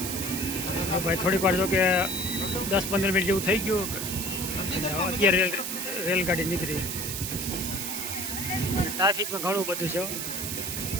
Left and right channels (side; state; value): right; noise; hiss, 4 dB below the sound